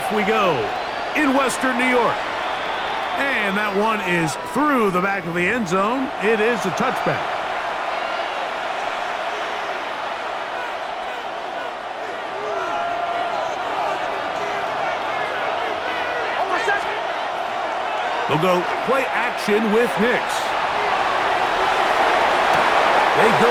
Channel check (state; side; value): identical; both; correlation 1.00